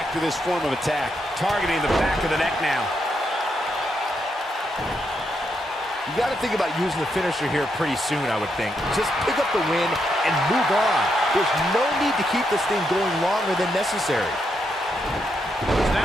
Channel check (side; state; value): both; normal; correlation 0.80